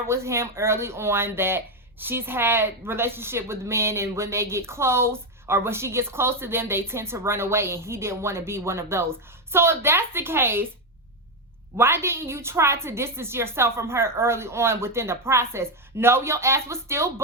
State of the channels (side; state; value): both; normal; correlation 0.07